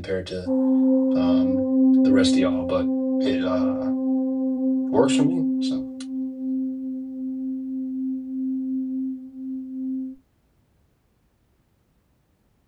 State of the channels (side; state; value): both; identical; correlation 1.00